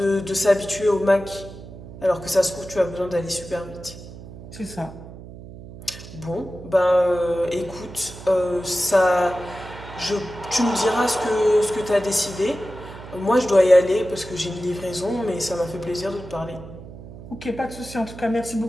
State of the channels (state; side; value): noise; right; hum, 15 dB below the sound